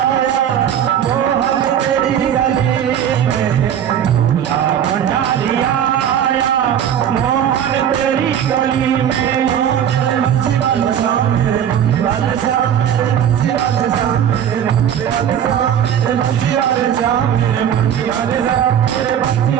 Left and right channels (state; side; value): quieter; left; 9.4 dB